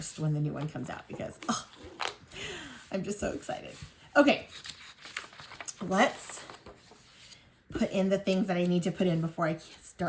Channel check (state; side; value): identical; both; correlation 1.00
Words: when the new one comes out because I'm just so excited. Okay, let's put in the things that I need to put in before I